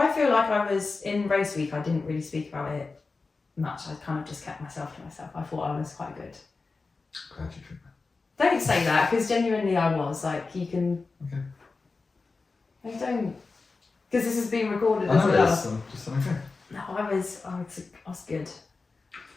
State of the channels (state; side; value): quieter; right; 4.0 dB